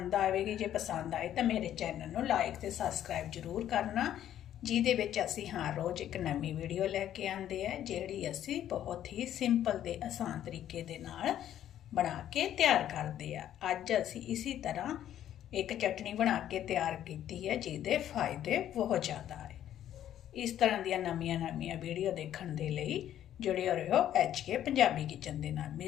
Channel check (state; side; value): quieter; right; 11.3 dB